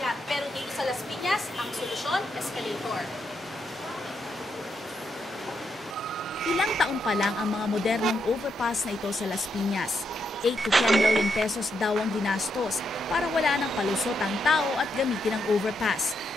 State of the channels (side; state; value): both; normal; correlation 0.81